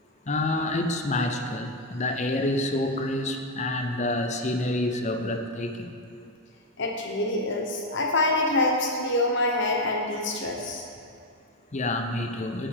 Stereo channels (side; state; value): both; normal; correlation 0.07